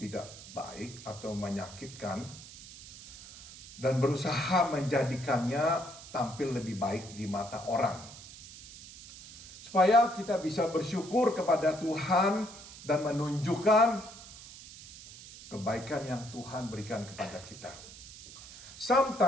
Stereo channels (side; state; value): right; noise; hiss, 16 dB below the sound